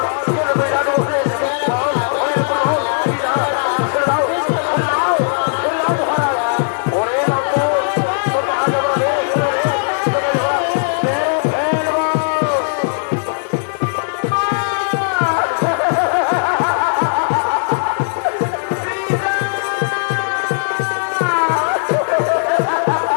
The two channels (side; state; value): right; silent; digital silence